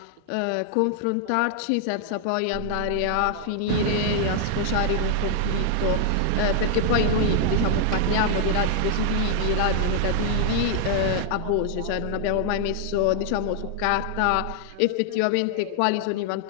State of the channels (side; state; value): both; different; correlation 0.00